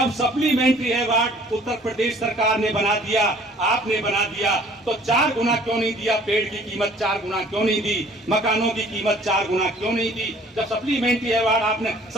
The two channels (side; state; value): both; normal; correlation 0.54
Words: सप्लीमेंट्री अवार्ड उत्तर प्रदेश सरकार ने बना दिया, आपने बना दिया, तो 4 गुना क्यों नहीं दिया? पेड़ की कीमत 4 गुना क्यों नहीं दी? मकानों की कीमत 4 गुना क्यों नहीं दी? जब सप्लीमेंट्री अवार्ड आपने